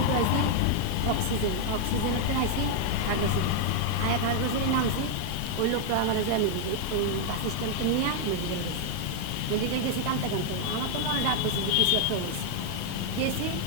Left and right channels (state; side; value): different; both; correlation 0.00